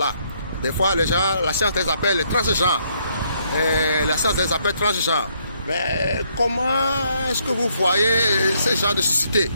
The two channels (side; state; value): both; inverted; correlation -0.71